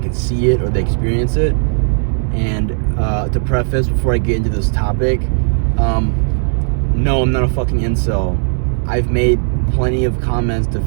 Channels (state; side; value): silent; left; digital silence